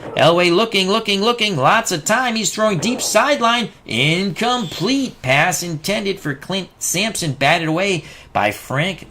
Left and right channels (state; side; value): identical; both; correlation 1.00